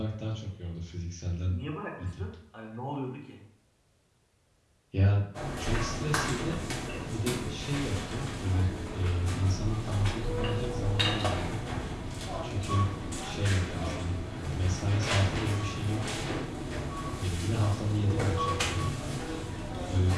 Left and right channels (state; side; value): identical; both; correlation 1.00